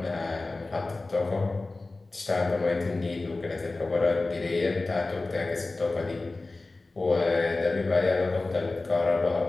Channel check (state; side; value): quieter; right; 3.3 dB